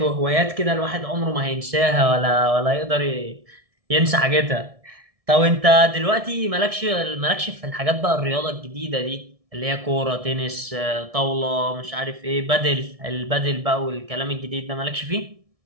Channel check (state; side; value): late; left; 1.7 ms